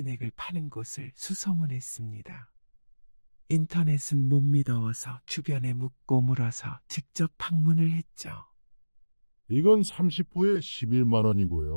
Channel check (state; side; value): inverted; both; correlation -1.00